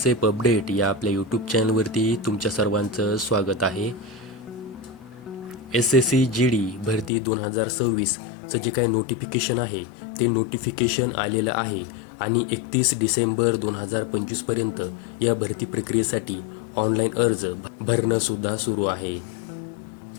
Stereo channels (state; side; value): drops out; right; at 7.1 s